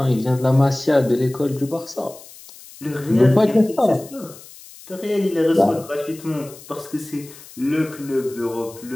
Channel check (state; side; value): noise; left; hiss, 19 dB below the sound